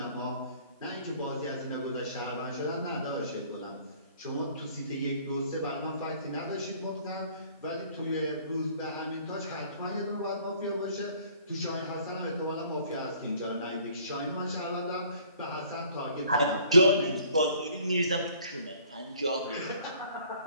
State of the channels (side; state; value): both; inverted; correlation -0.56